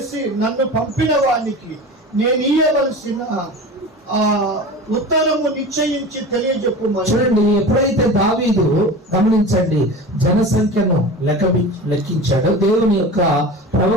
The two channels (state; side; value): normal; both; correlation 0.33